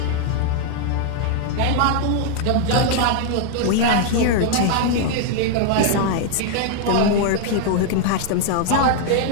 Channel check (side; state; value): both; different; correlation 0.00